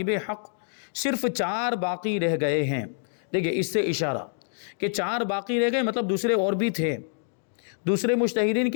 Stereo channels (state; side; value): silent; right; digital silence